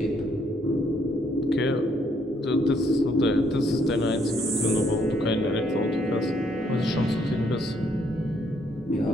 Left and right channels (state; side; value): normal; both; correlation 0.70